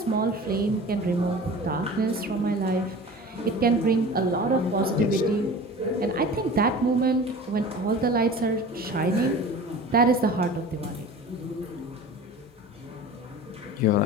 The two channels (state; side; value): normal; both; correlation 0.38